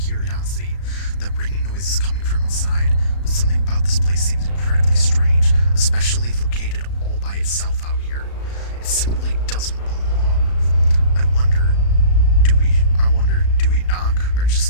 That ringing noise is coming from inside, but something about this place seems incredibly strange, especially located all by itself out here. It simply doesn't belong. I wonder, do we knock or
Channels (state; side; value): late; right; 35 ms